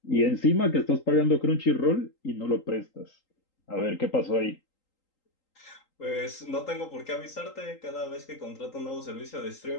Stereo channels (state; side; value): late; right; 3.8 ms